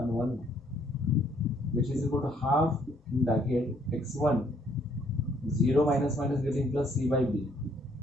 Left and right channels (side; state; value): both; normal; correlation 0.66